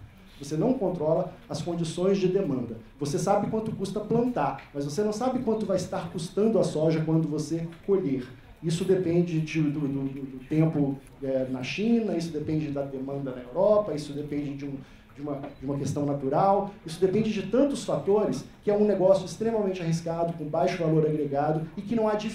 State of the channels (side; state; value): both; identical; correlation 1.00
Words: Você não controla as condições de demanda. Você sabe quanto custa plantar, mas você não sabe quanto vai estar custando a soja quando você colher. Isso depende do tempo na China, isso depende da demanda na Europa, isso depende de uma questão natural, isso depende de tantos fatores que é um negócio extremamente arriscado, com baixo valor agregado e que não há